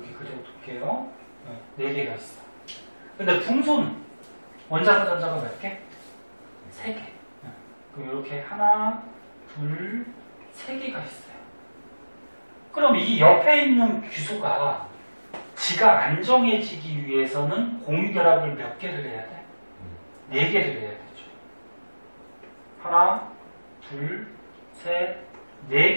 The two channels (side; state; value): both; inverted; correlation -1.00